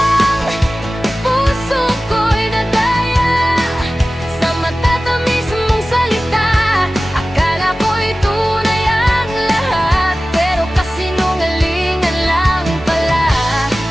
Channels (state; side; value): normal; both; correlation 0.96